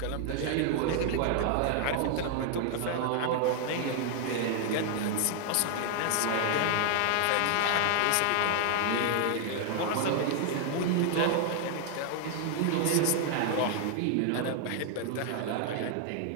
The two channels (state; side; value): different; both; correlation 0.00